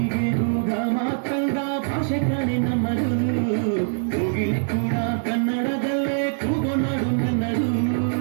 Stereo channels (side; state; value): left; silent; digital silence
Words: ರೋಗ ಮಾತಂದ ಭಾಷೆ ಕಣೆ ನಮ್ಮದು ಕೋಗಿಲೆ ಕೂಡ ಕನ್ನಡದಲ್ಲೇ ಕೂಗೋ ನಾಡು ನನ್ನದು